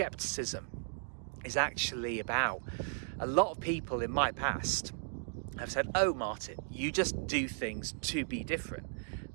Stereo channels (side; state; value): left; silent; digital silence